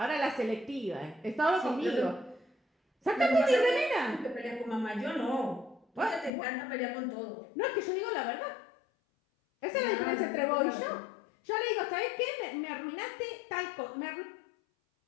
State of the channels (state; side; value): drops out; right; at 6.3 s